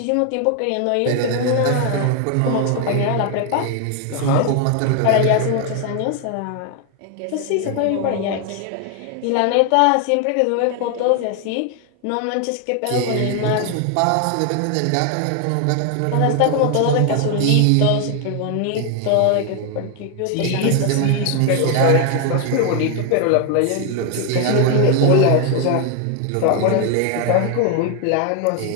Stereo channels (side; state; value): both; different; correlation 0.00